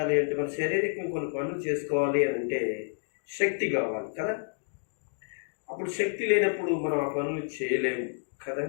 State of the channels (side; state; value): right; silent; digital silence